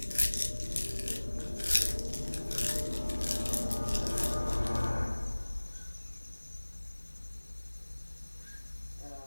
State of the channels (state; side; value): inverted; both; correlation -1.00